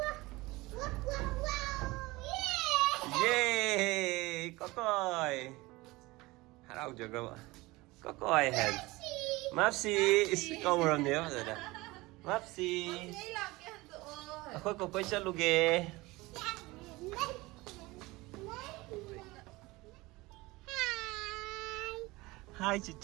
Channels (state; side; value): quieter; left; 21.4 dB